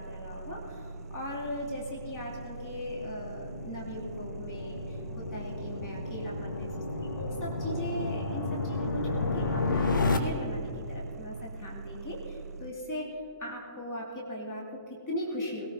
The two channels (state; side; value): inverted; both; correlation -0.58